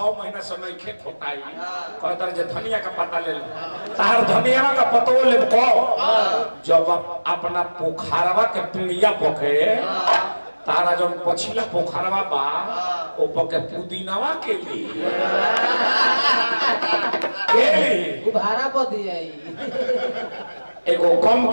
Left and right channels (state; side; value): inverted; both; correlation -1.00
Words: महीना समय खे खोटाई कहत रहे जे धनिया का पत्ता ले लो तहार धनिया का पत्तो ले को जब अपना पोखरवा के पिड़िया पोखे तारा जब पछिला पोखरवा बा ओपर के पुदीनावा के लिए भाड़ा पर दिया एगो कम